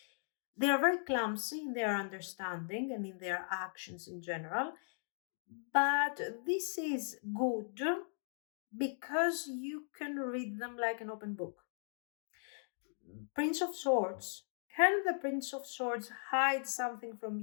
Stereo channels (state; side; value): silent; right; digital silence